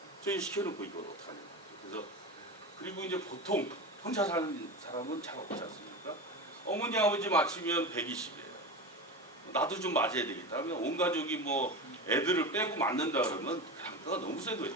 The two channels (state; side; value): normal; both; correlation 0.25